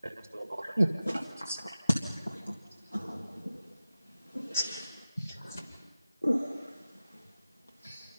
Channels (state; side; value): inverted; both; correlation -0.95